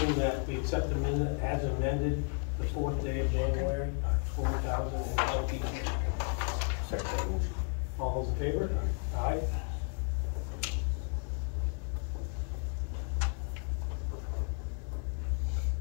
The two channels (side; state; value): right; quieter; 39.1 dB